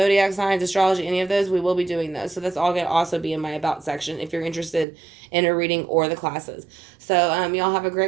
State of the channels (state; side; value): drops out; left; at 4.9 s